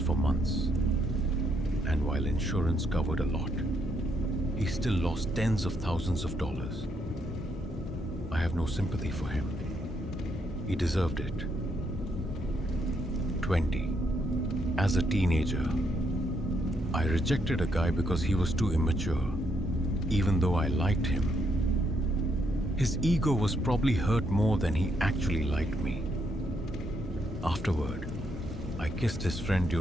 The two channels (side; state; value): both; normal; correlation 0.75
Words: months, and while insurance covered a lot, he still lost tens of thousands of dollars. I have no sympathy for him. He deserved it. 20. As a teenager, I rejected a guy because he was too immature, even though I liked him. His ego was probably hurt more than he actually liked me. Afterward, I kissed his friend